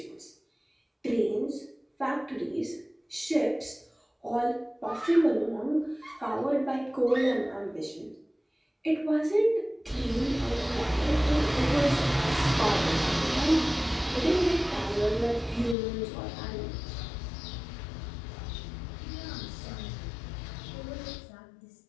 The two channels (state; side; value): drops out; right; at 15.8 s